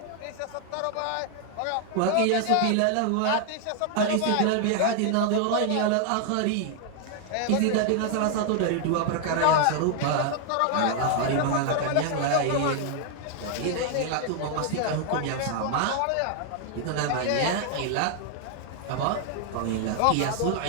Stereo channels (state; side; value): different; both; correlation 0.00